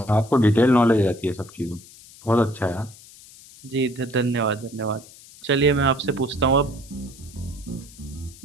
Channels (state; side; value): noise; left; hiss, 21 dB below the sound